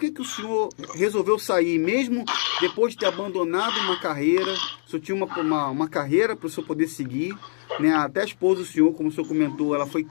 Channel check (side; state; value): right; silent; digital silence